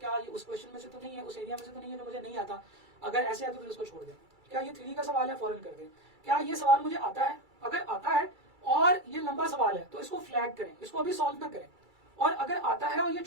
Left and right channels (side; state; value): left; late; 2.3 ms